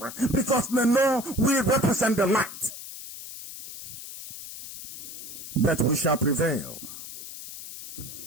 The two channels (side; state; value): left; noise; hiss, 12 dB below the sound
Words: Because they know we represent the light. But we shall prevail.